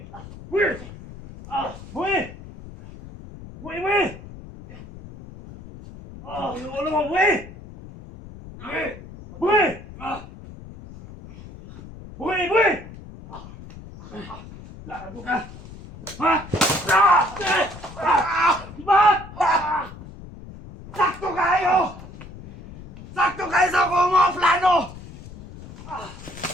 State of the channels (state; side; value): noise; left; rumble, 16 dB below the sound